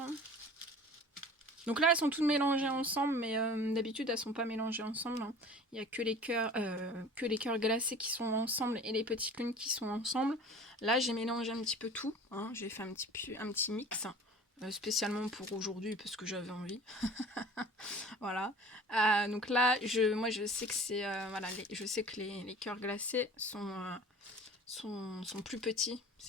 Donc là, elles sont toutes mélangées ensemble, mais d'habitude, elles sont pas mélangées ensemble. Hein. Il n'y a que les cœurs glacés qui sont ensemble et les petites lunes qui sont ensemble. Là, j'ai mélangé un petit peu tout. Hein. J'ai fait un petit mix, spécialement pour aujourd'hui, parce que j'avais envie. Voilà. Donc là, moi, je sais que c'est... voilà, je sais que les cœurs glacés sont plus petits.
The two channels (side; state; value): both; normal; correlation 0.43